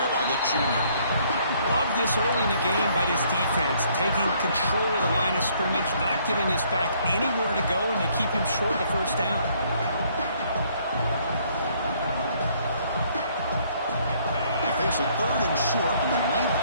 by the junior. Love this early in the game by this defense, taking control of the line of scrimmage, not giving this back anywhere to go, and they keep him short of the first down. They face a 3rd and short on the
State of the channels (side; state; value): both; inverted; correlation -0.65